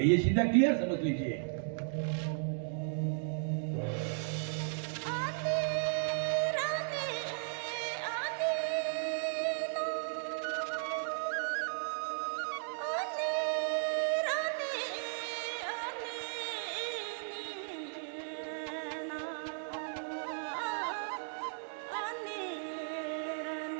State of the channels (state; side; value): silent; left; digital silence